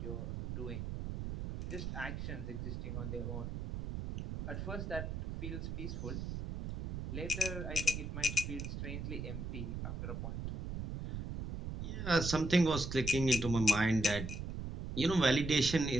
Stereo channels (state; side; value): noise; right; rumble, 5 dB below the sound